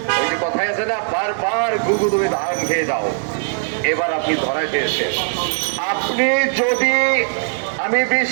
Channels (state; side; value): silent; left; 66 dB below the other